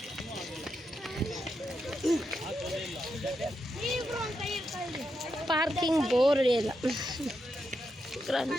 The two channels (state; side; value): normal; both; correlation 0.84